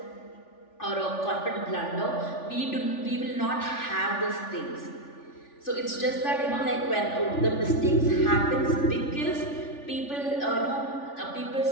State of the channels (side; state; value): right; late; 3.4 ms